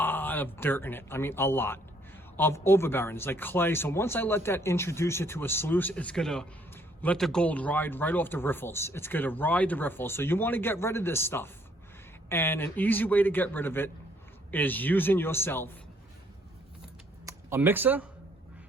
of dirt in it. I mean, a lot of overbearings, like clay. So once I let that introduce it to a sluice, it's gonna let the gold ride right off the riffles. It's gonna ride the riffles. So you wanna get rid of this stuff. And an easy way to get rid of it is using yourself a mixer,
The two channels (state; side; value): normal; both; correlation 0.66